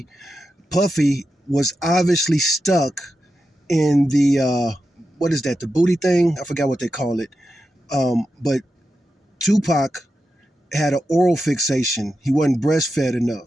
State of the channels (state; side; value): normal; both; correlation 0.89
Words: Puffy was obviously stuck in the what is that? The booty thing? I forgot what they call it. But Tupac had an oral fixation. He wasn't breastfed